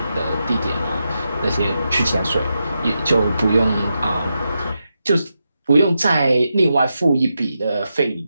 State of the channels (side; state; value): both; inverted; correlation -0.87